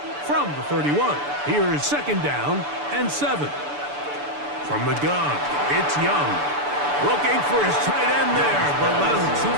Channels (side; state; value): left; late; 6.9 ms